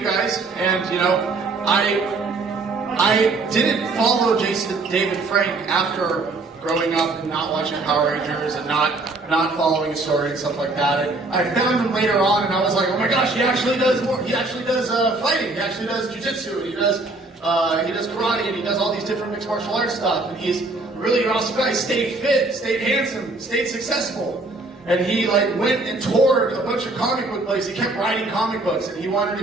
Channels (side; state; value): left; quieter; 3.3 dB